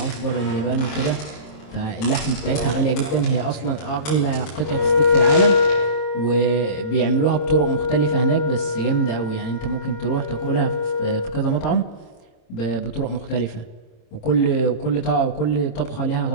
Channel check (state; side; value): late; right; 26 ms